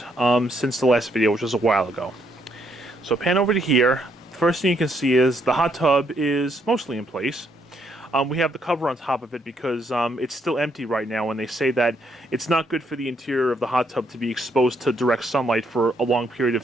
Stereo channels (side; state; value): both; normal; correlation 0.73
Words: since the last video, which was a while ago. So pan over to here. First thing you can see is the hot tub is mostly in place. We have the cover on top of it because it's still empty right now, and they say that it's not good for the interior of the hot tub to be exposed to direct sunlight for a long period